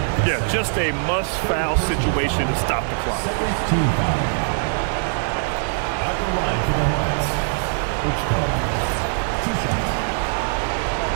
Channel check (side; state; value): left; silent; 55 dB below the other